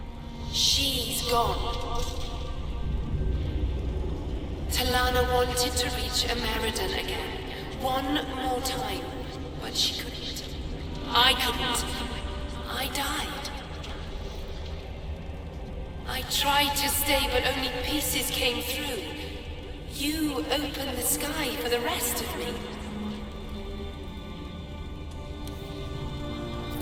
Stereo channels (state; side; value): identical; both; correlation 1.00